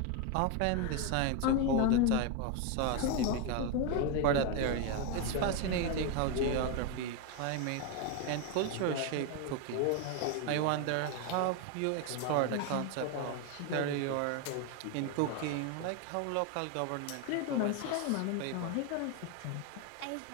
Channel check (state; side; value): different; both; correlation 0.02